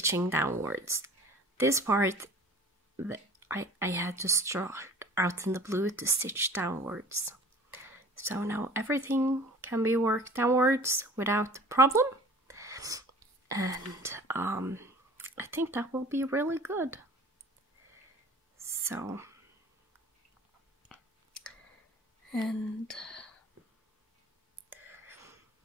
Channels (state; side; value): normal; both; correlation 0.45